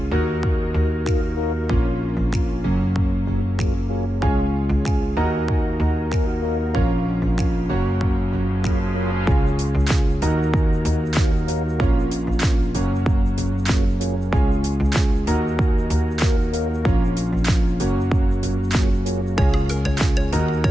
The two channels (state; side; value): normal; both; correlation 0.91